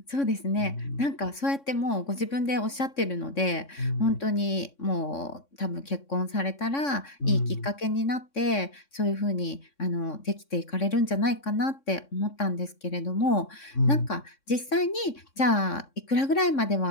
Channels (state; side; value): late; right; 3.6 ms